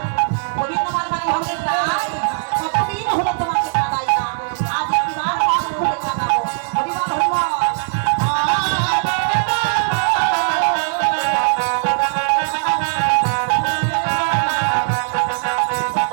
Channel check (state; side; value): silent; left; digital silence